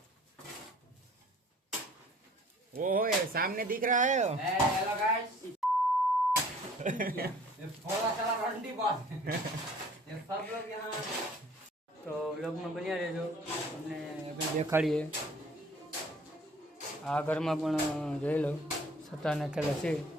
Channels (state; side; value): normal; both; correlation 0.53